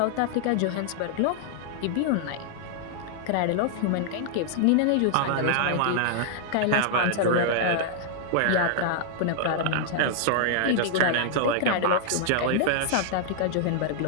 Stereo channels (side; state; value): both; different; correlation -0.01